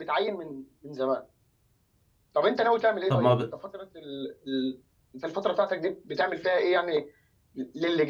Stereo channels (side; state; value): both; identical; correlation 1.00